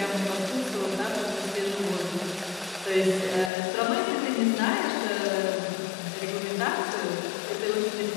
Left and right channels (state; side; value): drops out; right; at 3.5 s